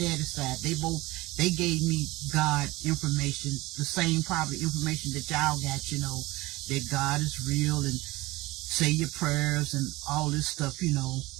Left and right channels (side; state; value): left; quieter; 20.4 dB